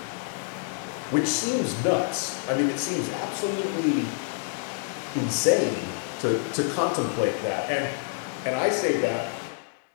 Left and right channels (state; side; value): silent; right; 60 dB below the other